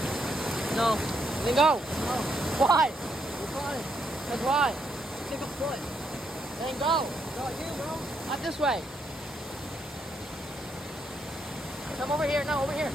No. Then go. No. Why? Why? That's why. Take a foot. Then go. Go here, bro. Not this way. Come over here. No, over here.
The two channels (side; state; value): both; normal; correlation 0.77